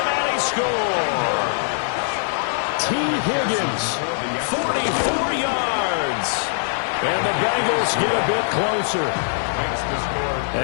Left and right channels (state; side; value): silent; right; digital silence